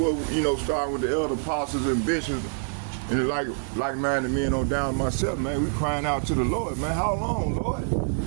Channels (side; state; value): left; silent; digital silence